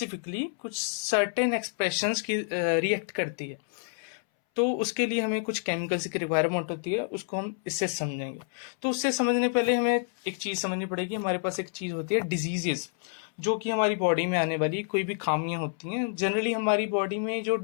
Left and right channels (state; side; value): silent; right; 59 dB below the other